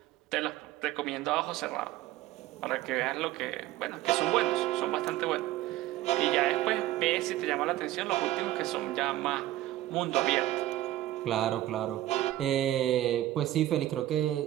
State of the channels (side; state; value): left; quieter; 15.0 dB